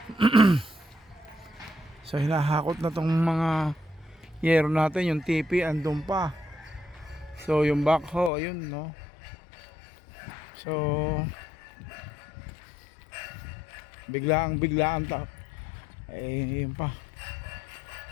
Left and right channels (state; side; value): drops out; right; at 8.3 s